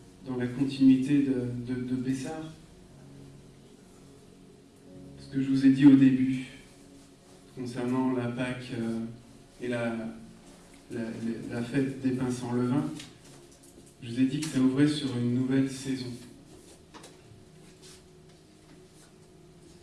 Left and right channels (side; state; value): both; identical; correlation 1.00